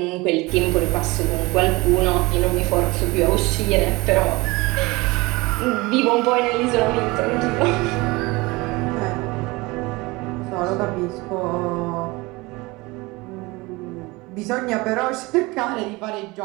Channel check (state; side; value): quieter; left; 23.2 dB